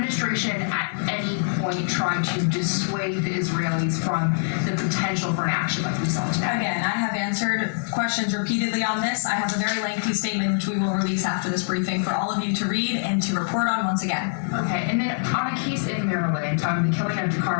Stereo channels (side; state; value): right; silent; 62 dB below the other